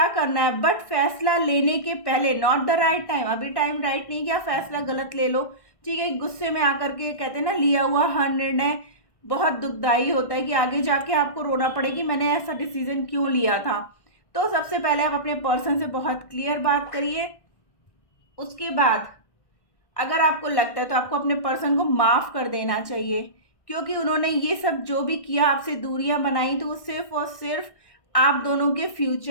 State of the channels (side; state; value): right; late; 1.6 ms